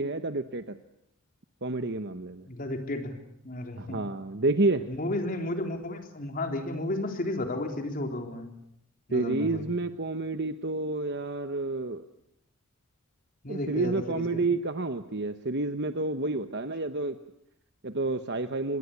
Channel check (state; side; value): normal; both; correlation 0.19